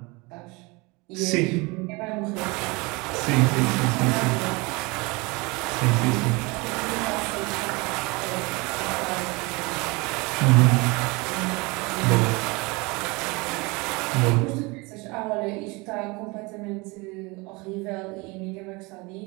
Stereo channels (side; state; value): left; quieter; 26.0 dB